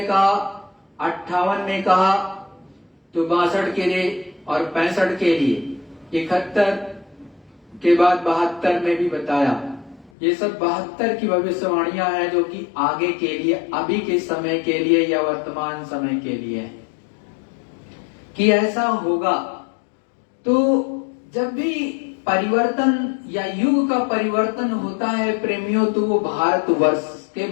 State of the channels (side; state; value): right; drops out; at 10.1 s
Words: कहा, 58 में कहा, तो 62 के लिए और 65 के लिए, 71 के बाद 72 में भी बताया। ये सब 72 की भविष्यवाणियां हैं, जो कि आगे के लिए, अभी के समय के लिए या वर्तमान समय के लिए है कि ऐसा होगा। तो जब भी परिवर्तन या युग का परिवर्तन होता है प्रेमियों, तो वो भारतवर्ष के